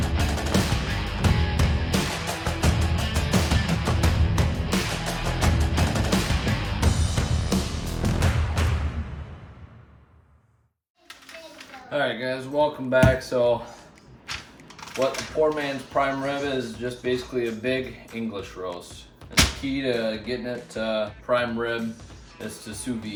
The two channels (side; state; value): both; identical; correlation 1.00